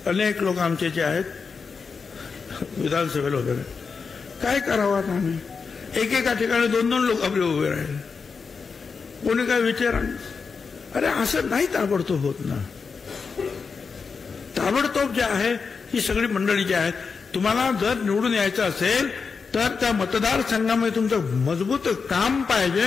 अनेक लोक आमचे जे आहेत विधानसभेला उभे राहिले. काय करावं आता आम्ही? एकेका ठिकाणी 2-2 लोक आपले उभे राहिले. कोणी काय विचार? अरे असं नाही ताबडतोब होत ना. ताबडतोब जे आहे ही सगळी मंडळी जी आहेत, तुम्हाला जर निवडून यायचं असेल तर त्या मतदारसंघामध्ये तुमचं मजबूत काम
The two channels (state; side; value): quieter; right; 5.2 dB